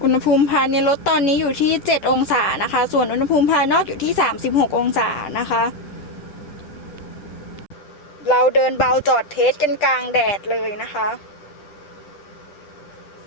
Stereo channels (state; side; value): late; right; 10 ms